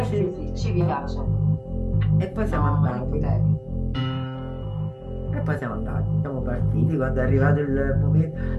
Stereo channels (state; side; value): identical; both; correlation 1.00